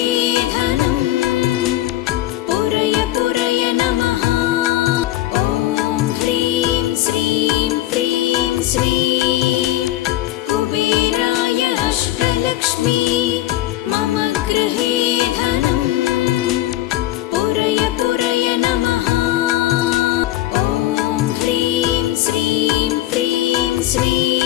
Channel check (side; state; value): right; quieter; 15.1 dB